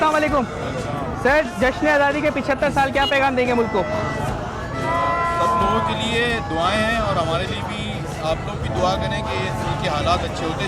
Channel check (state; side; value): identical; both; correlation 1.00